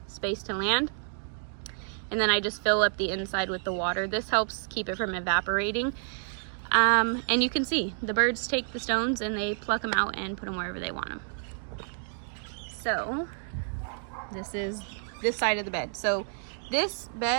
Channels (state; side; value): silent; left; digital silence